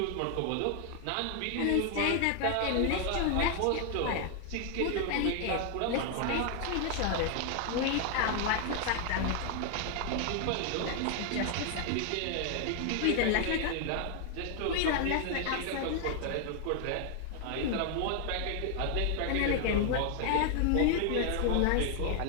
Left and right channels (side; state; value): both; different; correlation 0.00